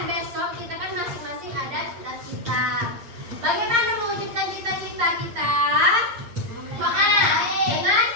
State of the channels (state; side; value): late; left; 8.6 ms